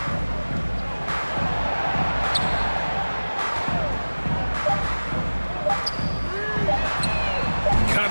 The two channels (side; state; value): both; inverted; correlation -1.00